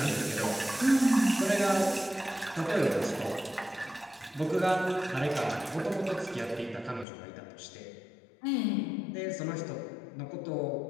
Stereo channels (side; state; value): right; drops out; at 7.1 s